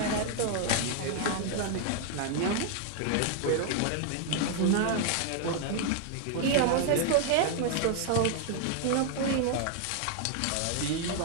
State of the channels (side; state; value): both; different; correlation 0.00